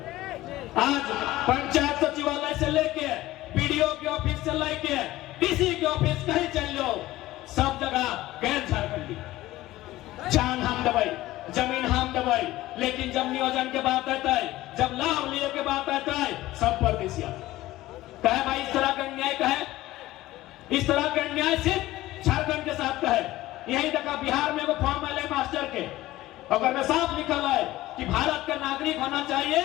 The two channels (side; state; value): right; quieter; 16.7 dB